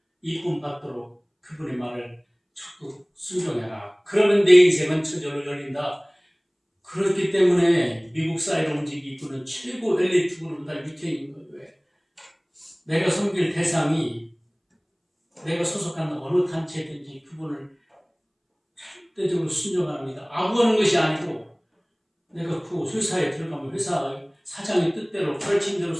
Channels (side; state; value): both; identical; correlation 1.00